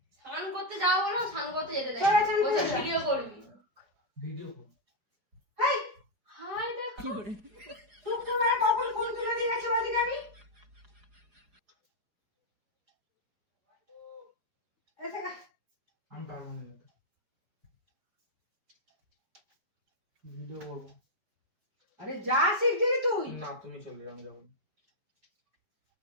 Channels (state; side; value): late; left; 4.8 ms